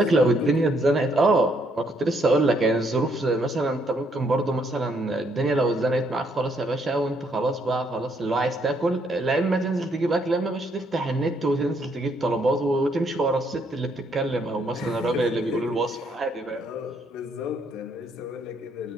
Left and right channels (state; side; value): normal; both; correlation 0.71